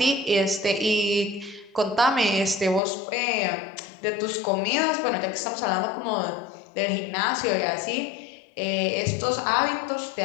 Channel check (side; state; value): right; drops out; at 2.8 s